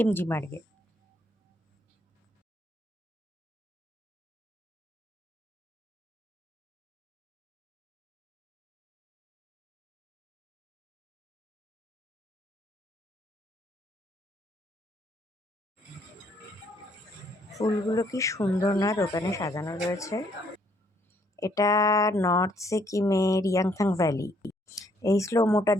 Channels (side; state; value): both; normal; correlation 0.68